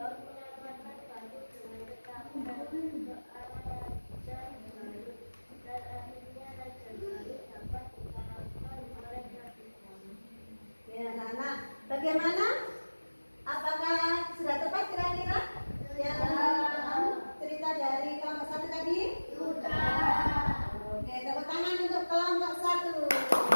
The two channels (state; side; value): inverted; both; correlation -1.00